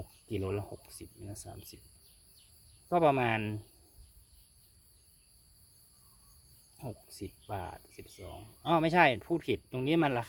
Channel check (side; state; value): both; identical; correlation 1.00